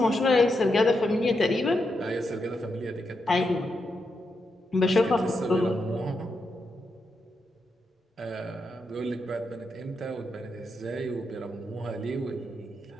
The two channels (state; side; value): normal; both; correlation 0.84